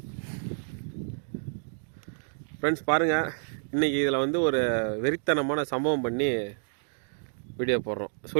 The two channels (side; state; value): left; silent; 58 dB below the other